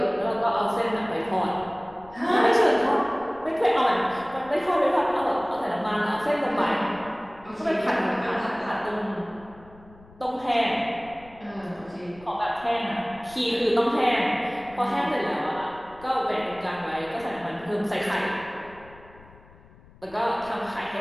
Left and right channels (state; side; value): noise; left; rumble, 23 dB below the sound